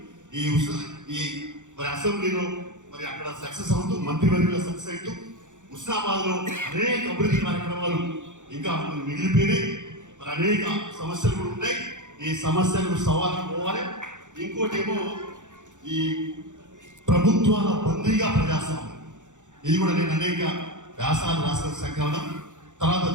ఈ మరి అసెంబ్లీలో మరి అక్కడ సక్సెస్ అవుతూ మంత్రివర్గంలో సక్సెస్ అవుతూ హుస్నాబాద్ లో అనేక అభివృద్ధి కార్యక్రమాలు ఇంకా మిగిలిపోయినాయి. మరి అనేక సమస్యలు కూడా ఉన్నాయి. ఈ సమస్యలకు సవాలు పోవాలి. ఇంకోటి ఏమో ఈ ప్రభుత్వాల బందీగా ప్రజాస్వామ్యం, ఇది కూడా నేను అనేక వ్యాసాలు రాసిన సంకలనం. తర్వాత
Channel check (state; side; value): late; left; 0.86 ms